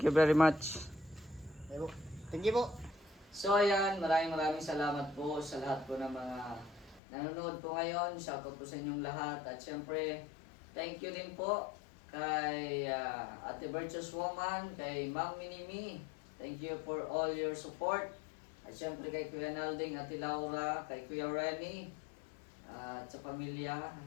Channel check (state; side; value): drops out; right; at 7.0 s